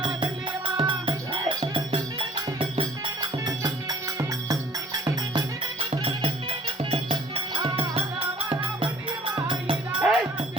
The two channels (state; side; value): normal; both; correlation 0.53